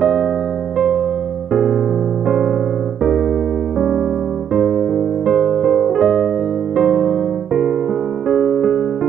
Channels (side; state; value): left; quieter; 8.9 dB